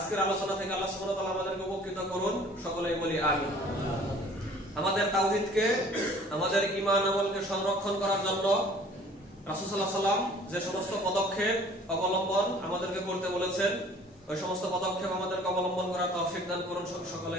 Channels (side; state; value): both; normal; correlation 0.51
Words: আলোচনা থেকে আল্লাহ সুবহানাহু ওয়া তাআলা আমাদেরকে উপকৃত করুন, সকলেই বলি আমিন। আমাদের তাওহীদকে, আমাদের ঈমান আমলকে সংরক্ষণ করার জন্য রাসূল সাল্লাল্লাহু আলাইহি ওয়াসাল্লাম যে সমস্ত পদক্ষেপ অবলম্বন আমাদেরকে করতে বলেছেন, ওই সমস্ত পদক্ষেপ আমাদেরকে অবলম্বন করার তৌফিক দান করুন,